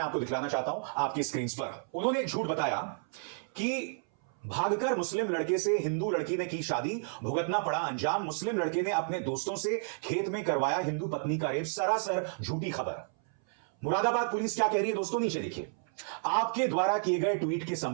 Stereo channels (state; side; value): silent; left; 57 dB below the other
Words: आपको दिखलाना चाहता हूं आपकी स्क्रीन पर। उन्होंने एक झूठ बताया कि भागकर मुस्लिम लड़के से हिंदू लड़की ने की शादी, भुगतना पड़ा अंजाम। मुस्लिम लड़के ने अपने दोस्तों से खेत में करवाया हिंदू पत्नी का रेप। सरासर झूठी खबर। मुरादाबाद पुलिस क्या कह रही है दोस्तों, नीचे देखिए। आपके द्वारा किए गए ट्वीट के